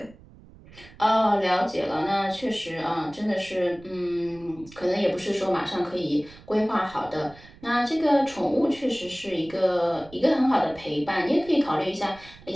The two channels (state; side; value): noise; right; rumble, 22 dB below the sound